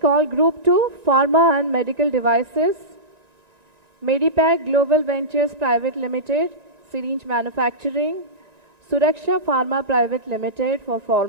Group 2, Pharma and Medical Devices. Medipac Global Ventures Private Limited, syringe manufacturing. Suraksha Pharma Private Limited for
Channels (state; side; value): late; left; 1.9 ms